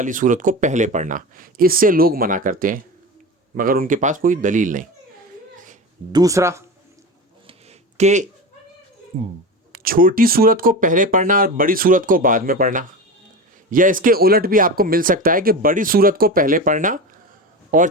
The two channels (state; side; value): normal; both; correlation 0.26